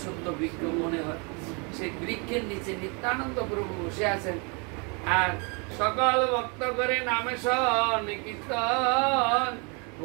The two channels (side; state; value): left; quieter; 32.9 dB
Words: বৃক্ষ মনে হয়। সেই বৃক্ষের নিচে নিত্যানন্দ প্রভু বসে আছেন, আর সকল ভক্ত করে নামে শন কীর্তন,